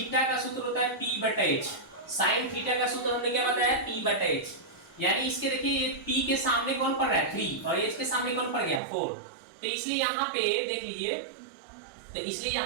का सूत्र होता है P/H। साइन थीटा का सूत्र हमने क्या बताया, P/H। यानी इसके देखिए ये P के सामने कौन पड़ रहा है 3 और H के सामने कौन पड़ गया 4। तो इसलिए यहाँ पे देख लीजिए, तो इसलिए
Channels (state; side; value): drops out; left; at 8.8 s